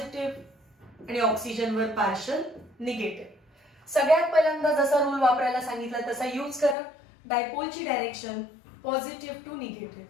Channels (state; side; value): drops out; right; at 6.8 s